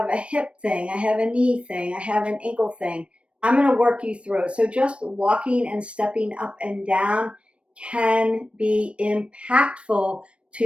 a hip thing, I have a knee thing, I have an ankle thing. I'm going to work you through it. So just walking and stepping up and down can be impactful to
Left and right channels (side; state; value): left; late; 0.060 ms